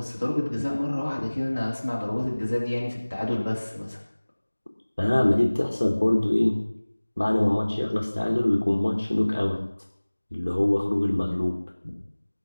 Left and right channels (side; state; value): both; inverted; correlation -1.00